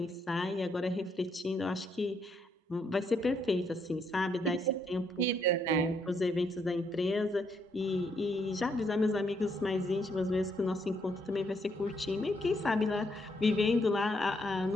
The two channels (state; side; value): normal; both; correlation 0.74